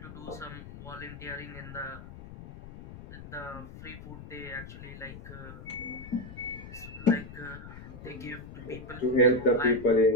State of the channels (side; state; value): left; noise; rumble, 13 dB below the sound